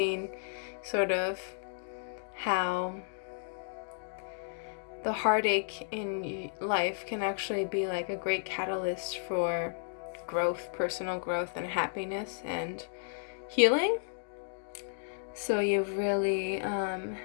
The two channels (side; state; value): right; silent; digital silence